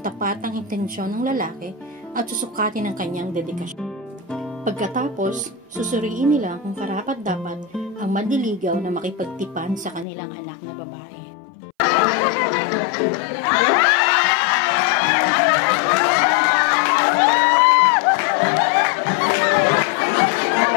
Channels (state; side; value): drops out; right; at 10.1 s